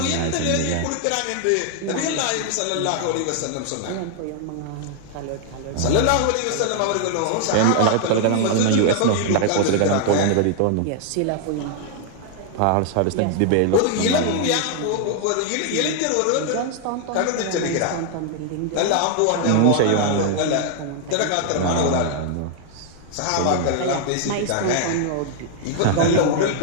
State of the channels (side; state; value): both; different; correlation 0.00